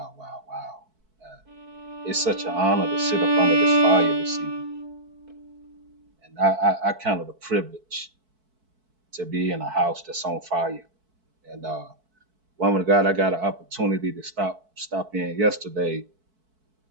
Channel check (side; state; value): left; late; 4.6 ms